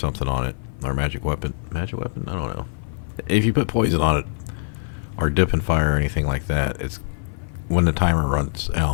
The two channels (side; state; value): right; silent; 55 dB below the other